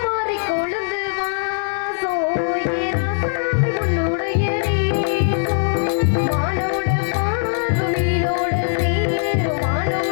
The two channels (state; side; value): silent; right; digital silence